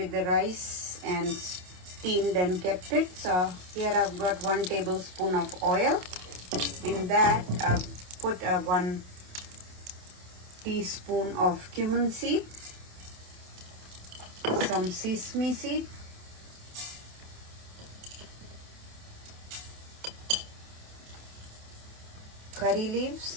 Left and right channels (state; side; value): late; left; 28 ms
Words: the rice and steamed and kept it. So here I've got 1 tablespoon of oil. In that I've put 1 teaspoon of cumin seed, some sesame seed, curry leaves,